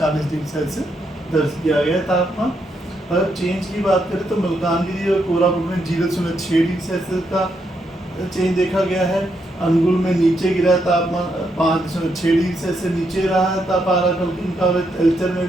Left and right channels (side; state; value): both; normal; correlation 0.79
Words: डिग्री सेल्सियस दर्ज किया गया है तापमान। अगर चेंज की बात करें तो मलकानगिरी और कोरापुट में 0.6 डिग्री सेल्सियस का चेंज देखा गया है। अनुगुल में नीचे गिरा है तापमान 5.6 डिग्री सेल्सियस नीचे रहा है पारा का। एल्चर में